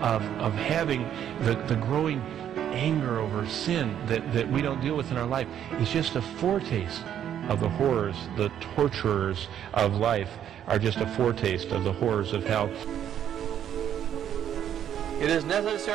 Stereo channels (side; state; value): left; quieter; 9.9 dB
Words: having the growing anger over sin that we don't deal with in our life is just a foretaste of the horrors. The torturers of life are just a foretaste of the horrors of hell. It is